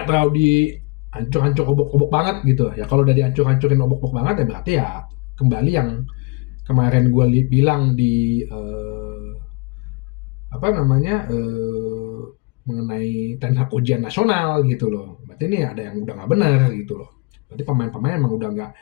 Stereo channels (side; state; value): right; quieter; 27.7 dB